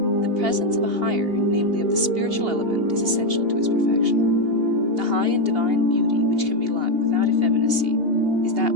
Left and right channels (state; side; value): late; left; 2.8 ms